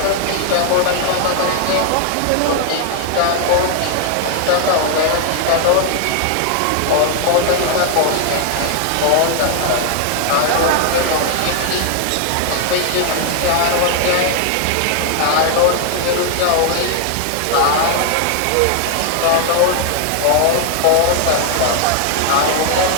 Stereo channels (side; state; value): both; different; correlation 0.00